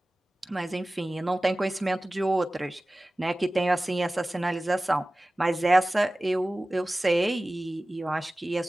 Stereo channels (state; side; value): normal; both; correlation 0.97